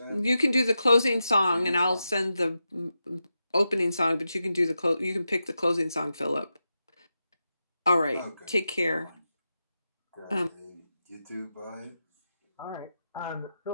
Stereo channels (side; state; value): both; inverted; correlation -0.89